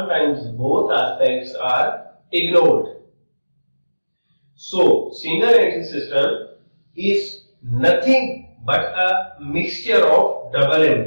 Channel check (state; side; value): inverted; both; correlation -1.00